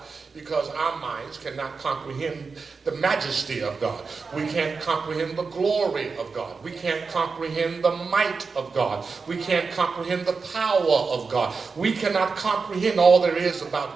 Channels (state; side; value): quieter; left; 4.8 dB